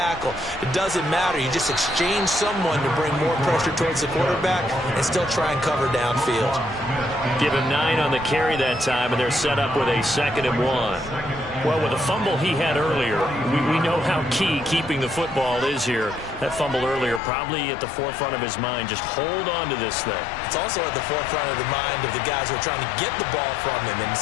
It doesn't matter. You just exchange someone to bring more pressure towards the quarterback and still try and cover downfield. Give him 9 on the carry that time, and they're set up with a 2nd and 1. Well, with the fumble he had earlier, we know how key keeping the football is here. That fumble earlier probably at the forefront of his mind. Just hold on to this thing. It's also at the forefront of the mind of the guys who are trying to get the ball from him. And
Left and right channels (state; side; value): drops out; right; at 17.2 s